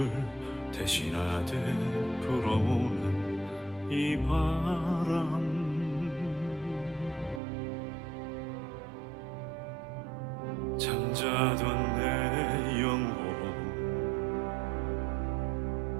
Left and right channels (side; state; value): left; drops out; at 7.4 s